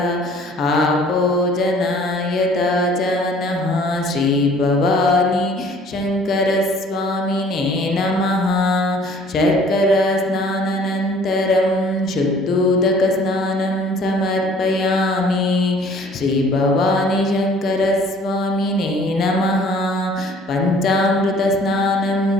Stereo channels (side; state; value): both; normal; correlation 0.54